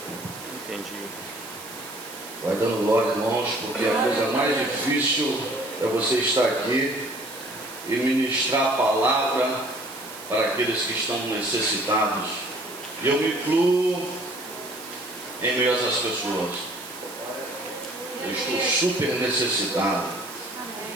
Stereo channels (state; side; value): noise; right; hiss, 14 dB below the sound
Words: Entendi. Vai dando glória, irmãos, porque a coisa mais difícil é você estar aqui e ministrar a palavra para aqueles que estão necessitados. E eu me incluo em meio a essas pessoas. Eu estou super necessitado.